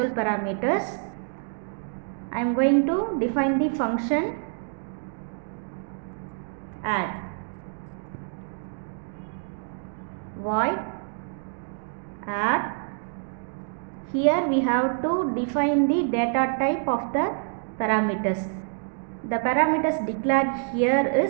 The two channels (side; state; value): left; silent; 60 dB below the other